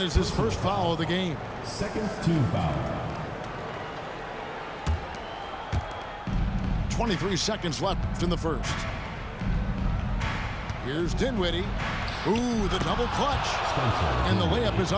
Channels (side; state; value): both; identical; correlation 1.00